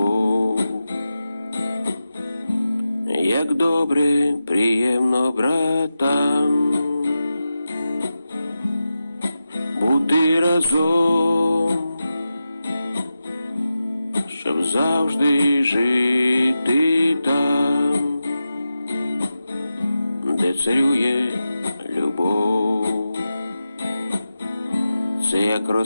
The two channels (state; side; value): inverted; both; correlation -0.92